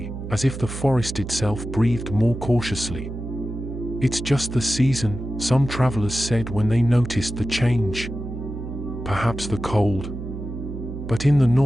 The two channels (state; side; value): noise; right; hum, 8 dB below the sound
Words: as if the forest itself breathed more cautiously. It's just the season, some travelers said when they noticed the change. perhaps the cold. But in the